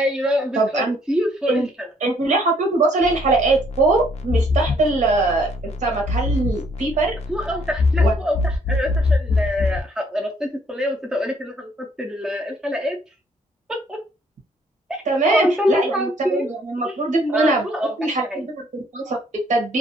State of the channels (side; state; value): both; normal; correlation 0.65